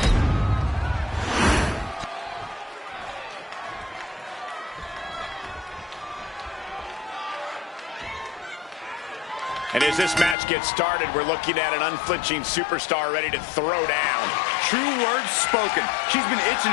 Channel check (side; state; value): right; drops out; at 10.4 s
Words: And as this match gets started, we're looking at an unflinching superstar ready to throw down. True words spoken. She's been itching